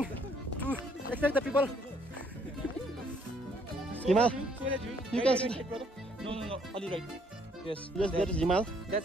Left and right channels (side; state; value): both; normal; correlation 0.66